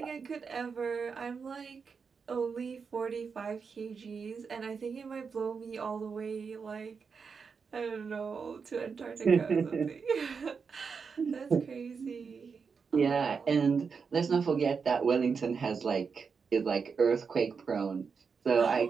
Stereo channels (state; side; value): quieter; left; 5.6 dB